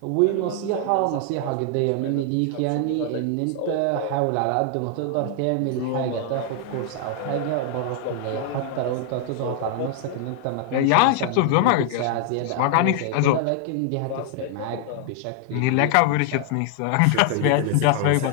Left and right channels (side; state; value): both; different; correlation 0.00